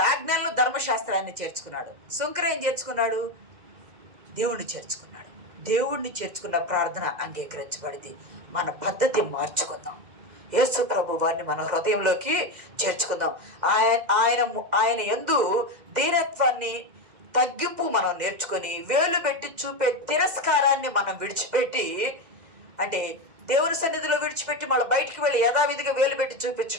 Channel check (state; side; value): late; left; 2.0 ms